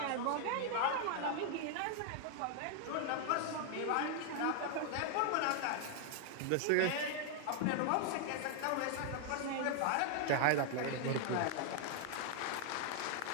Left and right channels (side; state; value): both; different; correlation 0.00